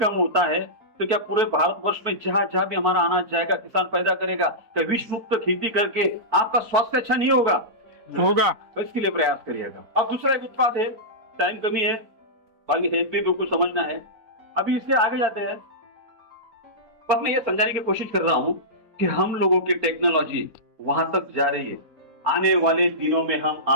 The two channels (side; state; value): left; late; 4.5 ms